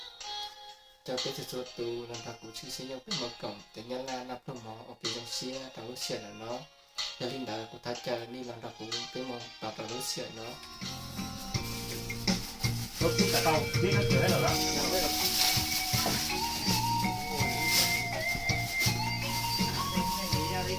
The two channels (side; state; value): both; identical; correlation 1.00